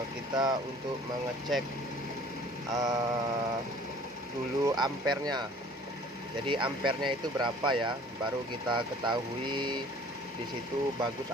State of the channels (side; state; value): both; normal; correlation 0.51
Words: kita untuk mengecek dulu ampernya. Jadi ampernya itu berapa ya, baru kita ketahui di situ bagus